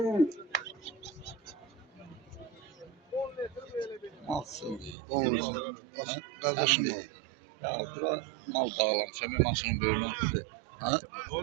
Malsın. 10 lira. Kardeşim o. Ya bura mal bağlamışam, ben maşının böyrünü oldu. Ha?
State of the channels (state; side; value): drops out; left; at 5.0 s